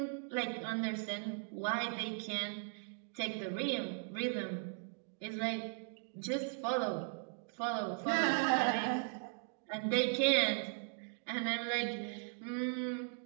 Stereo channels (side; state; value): left; silent; 52 dB below the other